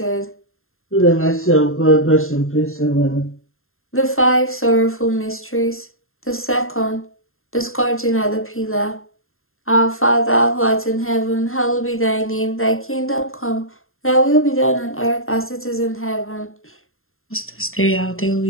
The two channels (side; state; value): right; late; 0.61 ms